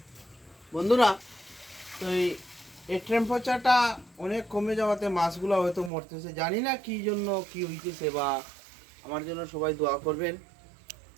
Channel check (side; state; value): left; drops out; at 5.9 s